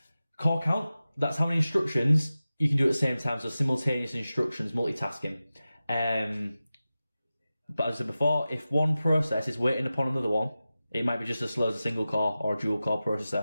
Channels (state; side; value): inverted; both; correlation -0.94